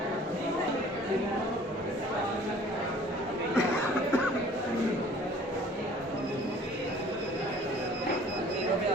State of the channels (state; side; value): normal; both; correlation 0.51